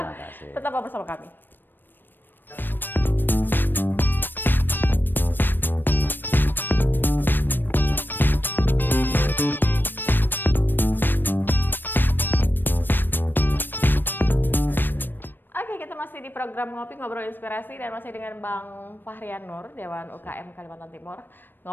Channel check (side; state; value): right; late; 0.094 ms